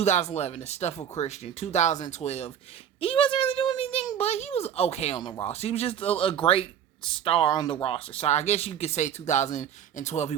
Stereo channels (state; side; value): quieter; left; 9.2 dB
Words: the stuff with Christian. 2012, he wasn't really doing anything, but he was okay on the roster. He was just a great star on the roster. So I guess you could say 2012 he